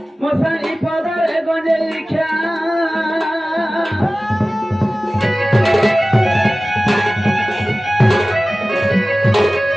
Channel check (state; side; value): normal; both; correlation 0.97